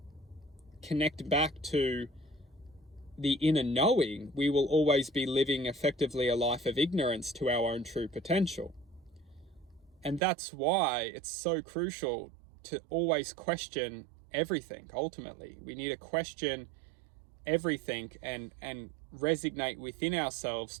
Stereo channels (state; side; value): drops out; left; at 10.2 s